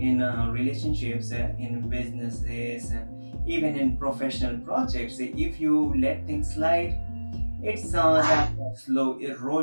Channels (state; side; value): inverted; both; correlation -1.00